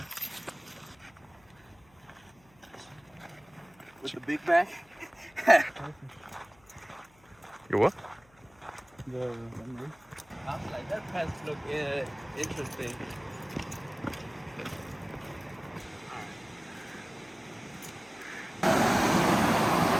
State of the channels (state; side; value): noise; left; hum, 29 dB below the sound